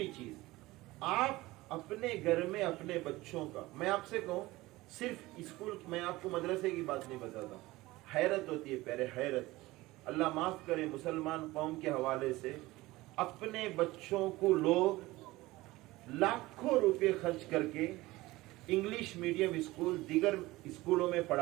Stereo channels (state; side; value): quieter; left; 19.4 dB